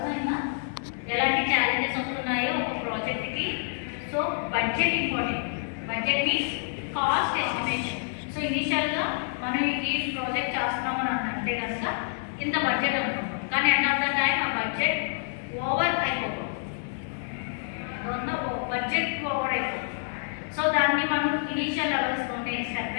ఎలాంటి ఛాలెంజెస్ వస్తున్నాయో ఒక ప్రాజెక్ట్కి. So budget important. Budget means cost estimation. So ఇనిషియల్గా మనం ఈ ప్రాజెక్ట్ చేస్తున్నామని అంటే కనుక ఇంత బడ్జెట్ అనుకుంటాం, కానీ ఎండ్ ఆఫ్ ద టైం ఆ బడ్జెట్ ఓవర్ అయిపోతుంది, బడ్జెట్ ఓవర్ అయిపోతుంది. సో దాన్ని మనం ఇనిషియల్ లెవెల్స్లోనే స్టెప్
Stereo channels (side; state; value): right; silent; 60 dB below the other